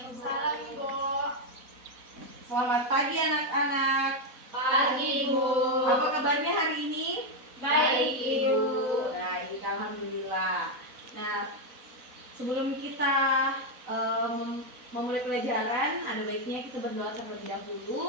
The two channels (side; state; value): left; late; 4.0 ms